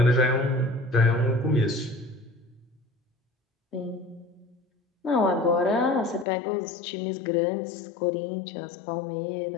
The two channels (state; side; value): drops out; right; at 6.2 s